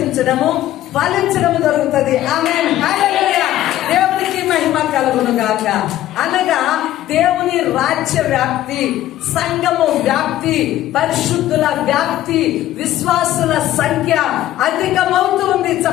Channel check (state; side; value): quieter; right; 13.7 dB